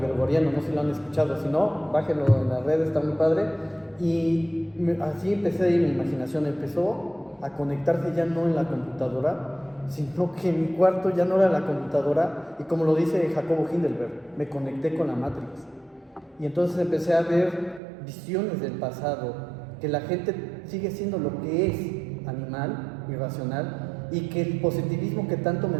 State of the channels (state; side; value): drops out; left; at 17.8 s